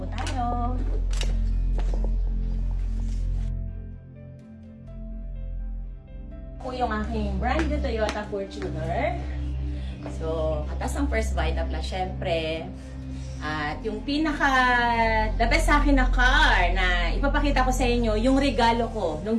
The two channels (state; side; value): identical; both; correlation 1.00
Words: tayo. Ito po yung aking brand new Toyota Fortuner. So, katas ang First Vita Plus, syempre. At yung the best sa akin na car na ipapakita ko sa inyo, yung regalo ko nung